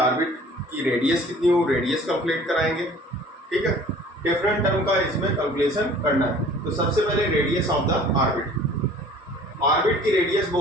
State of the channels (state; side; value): normal; both; correlation 0.49